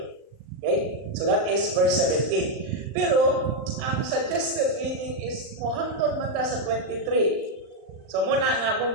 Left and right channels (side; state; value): left; late; 39 ms